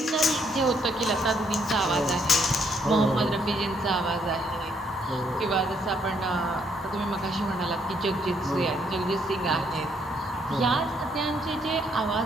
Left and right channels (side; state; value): both; normal; correlation 0.71